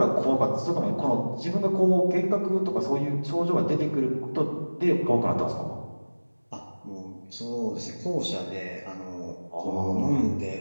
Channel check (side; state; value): both; inverted; correlation -1.00